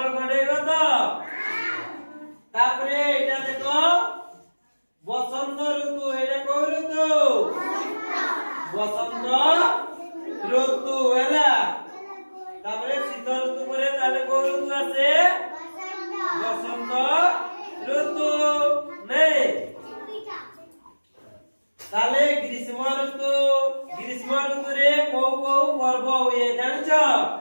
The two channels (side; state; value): both; inverted; correlation -1.00